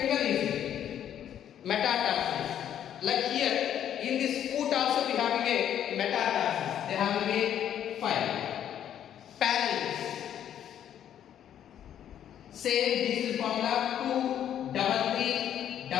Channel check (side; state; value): right; quieter; 10.1 dB